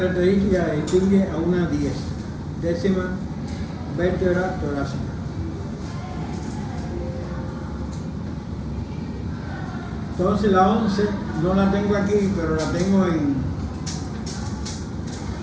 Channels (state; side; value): identical; both; correlation 1.00